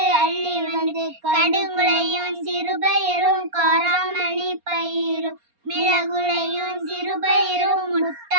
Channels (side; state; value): left; late; 4.3 ms